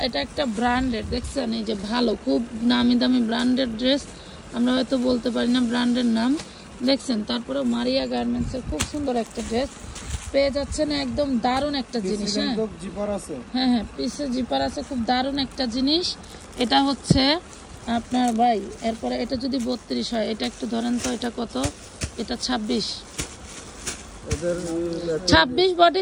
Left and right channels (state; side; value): identical; both; correlation 1.00